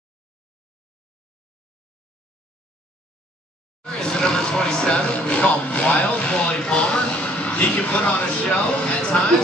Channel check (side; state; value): both; normal; correlation 0.60